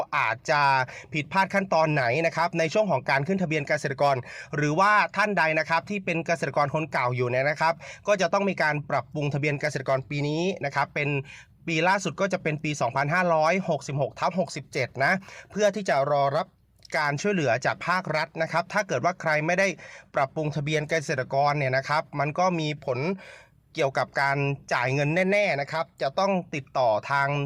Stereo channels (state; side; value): identical; both; correlation 1.00